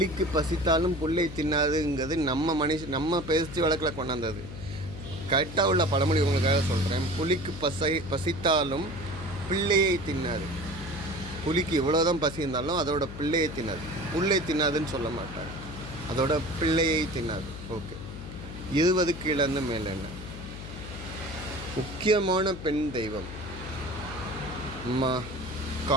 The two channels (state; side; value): noise; left; hum, 11 dB below the sound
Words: பசித்தாலும் புல்லை தின்னாதுங்கிறது நம்ம பேச்சு வழக்கில் கொண்டாந்தது. கரெக்டாக உள்ள பழமொழி உங்களுக்காக சொல்கிறேன். புலிக்கு பசித்தாலும் பிள்ளையை தின்னாது. புலிக்கு இவ்வளோதான் பசி இருந்தாலும் அதோட பிள்ளையை தின்னாது. புல்லை தின்னாதுன்னு சொல்ல மாட்டாங்க, அதோட பிள்ளையை தின்னாது. ஓகே. 20 கீழேருந்து மேலே என்ன, முக்கியமான பெண் தெய்வம் அம்மா